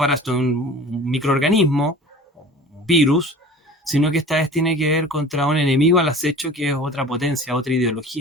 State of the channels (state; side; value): normal; both; correlation 0.41